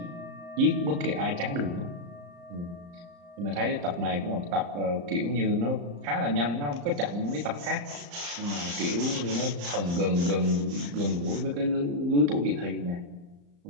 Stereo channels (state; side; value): late; left; 35 ms